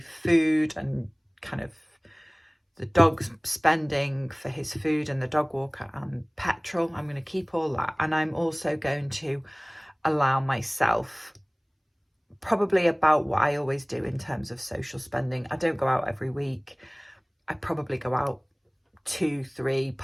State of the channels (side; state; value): both; identical; correlation 1.00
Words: food and kind of the dog's spending for his food and the dog walker and petrol. I'm going to keep all that. And I'm also going to allow myself probably about what I always do in terms of social spending. I don't go out every week. I probably go out 2, 3,